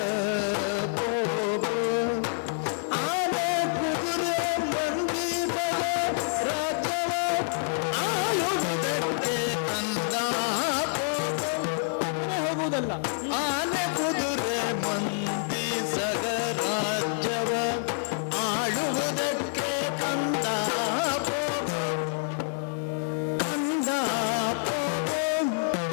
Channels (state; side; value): silent; right; 60 dB below the other